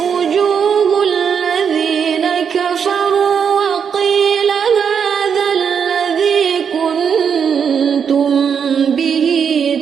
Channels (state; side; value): quieter; left; 7.1 dB